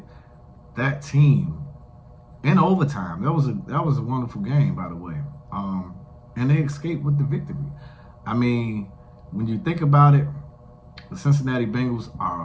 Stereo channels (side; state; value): both; identical; correlation 1.00